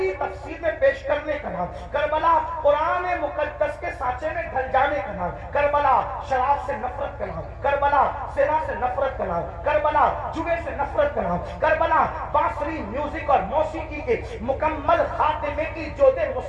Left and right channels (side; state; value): both; identical; correlation 1.00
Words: تفسیر میں پیش کرنے کا نام, کربلا قرآن مقدس کے سانچے میں ڈھل جانے کا نام, کربلا شراب سے نفرت کا نام, کربلا زنا سے نفرت کا نام, کربلا جوے سے نفرت کا نام, کربلا بانسری میوزک اور موسیقی کے مکمل خاتمے کی جود